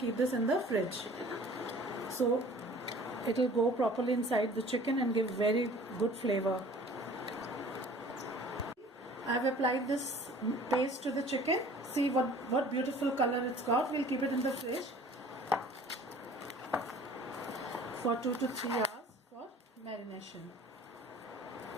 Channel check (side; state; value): both; normal; correlation 0.49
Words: this in the fridge. So it will go properly inside the chicken and give very good flavor. I have applied this paste to the chicken. See what beautiful color it's got. We'll keep it in the fridge for 2 to 3 hours for marination.